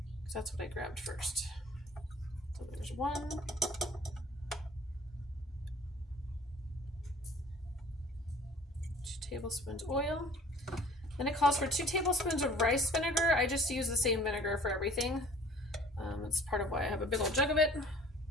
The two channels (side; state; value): both; normal; correlation 0.50